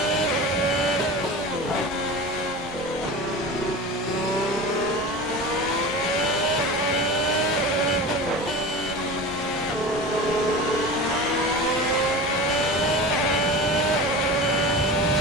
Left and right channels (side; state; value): both; normal; correlation 0.32